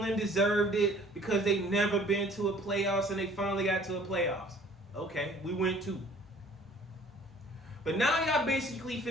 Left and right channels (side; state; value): both; normal; correlation 0.53